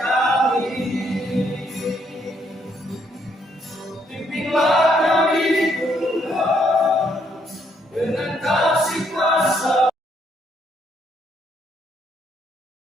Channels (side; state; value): both; normal; correlation 0.71